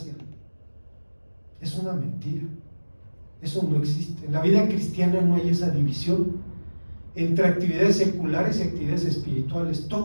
es una mentira, eso no existe. En la vida cristiana no hay esa división entre actividades seculares y actividades espirituales.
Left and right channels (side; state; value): both; inverted; correlation -1.00